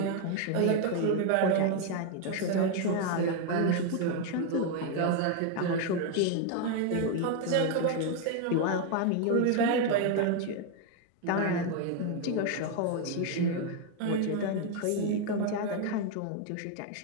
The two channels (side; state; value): both; different; correlation 0.01